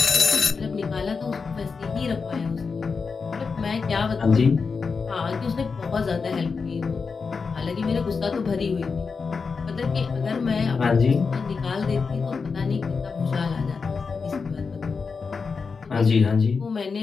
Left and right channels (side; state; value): right; quieter; 5.0 dB